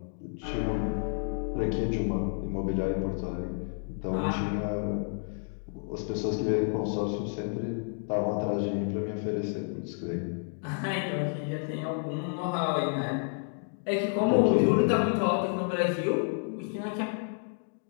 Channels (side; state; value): right; silent; 58 dB below the other